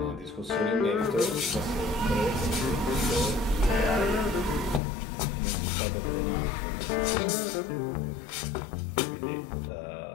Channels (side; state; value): right; drops out; at 4.8 s